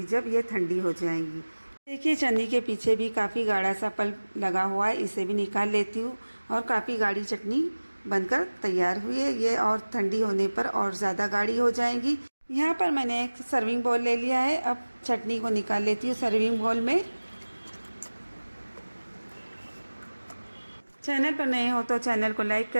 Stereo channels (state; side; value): inverted; both; correlation -1.00